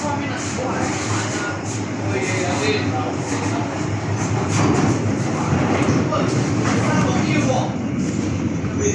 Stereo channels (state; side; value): identical; both; correlation 1.00